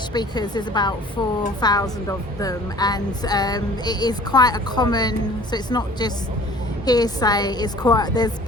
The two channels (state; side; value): normal; both; correlation 0.49